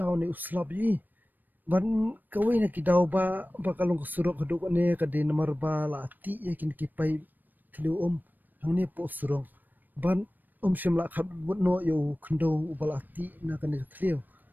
ni uslap yi. Ban kawin nak kidau ba kalong kesurung keduk ni kadi nomor bala ti ya kini kipai tilu hang ni po surung. Ban shimla khat but no yo kendo bala ti na kan tilu.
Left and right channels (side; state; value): left; late; 0.089 ms